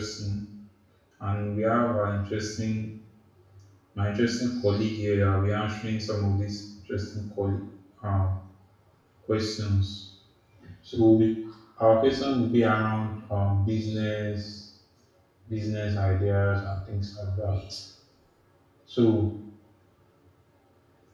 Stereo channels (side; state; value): both; identical; correlation 1.00